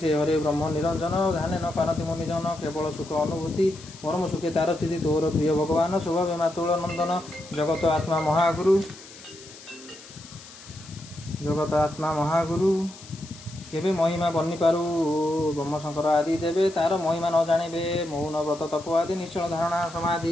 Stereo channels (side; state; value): left; noise; hiss, 18 dB below the sound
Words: हरे ब्रह्म निरंजन ध्यान न पारति मुनिजन केवल सुख अनुभूति परम सुखे तार स्थिति तोर प्रिय भगवान स्वभाव मातुल नंदन जगत आत्मा महागुरु केबे महिमा बनी पारू ब्रह्म शंकर आदि देवे तार महिमा न जानिबे मौन व्रत तप आदि निश्चल धारणा